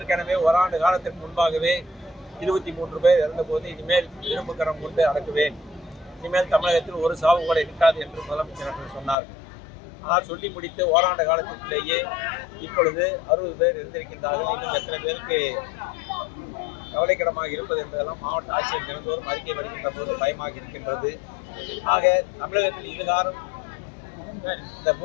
ஓராண்டு காலத்திற்கு முன்பாகவே 23 பேர் இறந்தபோது இனிமேல் இரும்பு கரம் கொண்டு அடக்குவேன், இனிமேல் தமிழகத்தில் ஒரு சாவு கூட இருக்காது என்று முதலமைச்சர் அவர்கள் சொன்னார்கள். ஆனால் சொல்லி முடித்து ஓராண்டு காலத்திலேயே இப்பொழுது 60 பேர் இருந்திருக்கின்றார்கள். இன்னும் எத்தனை பேருக்கு கவலைக்கிடமாக இருப்பது என்பதெல்லாம் மாவட்ட ஆட்சியர் தினந்தோறும் அறிக்கை வருகின்ற போது பயமாக இருக்கின்றது. ஆக தமிழகத்தில் இதுகாரம் இந்த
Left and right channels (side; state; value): right; drops out; at 9.2 s